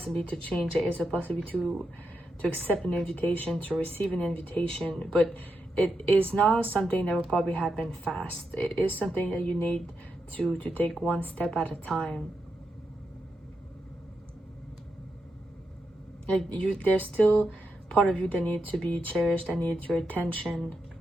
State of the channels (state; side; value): normal; both; correlation 0.85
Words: to change. There is a possibility to accept an invitation, to receive an invitation, but it is not something that will probably happen fast. It is something that you need to take one step at a time. Like there's still part of you that needs to be cherished, that needs your attention.